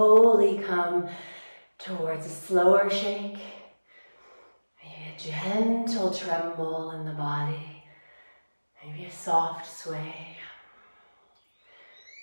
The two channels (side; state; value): both; inverted; correlation -1.00